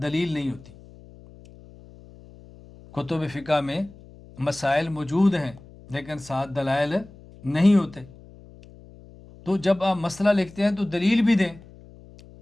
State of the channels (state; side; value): noise; left; hum, 21 dB below the sound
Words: دلیل نہیں ہوتی۔ کتب فقہ میں مسائل موجود ہیں لیکن ساتھ دلائل نہیں ہوتے، تو جب آپ مسئلہ لکھتے ہیں تو دلیل بھی دیں۔